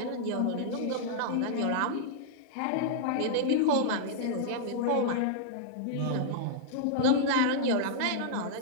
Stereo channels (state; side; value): different; both; correlation -0.01